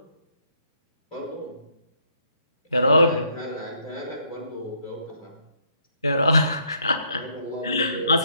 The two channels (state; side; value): inverted; both; correlation -0.70